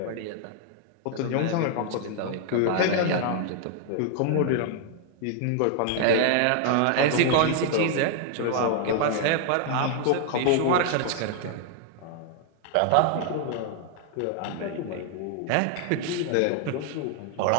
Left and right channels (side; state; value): both; different; correlation 0.00